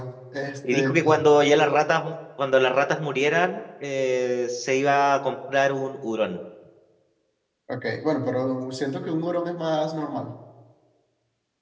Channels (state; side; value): identical; both; correlation 1.00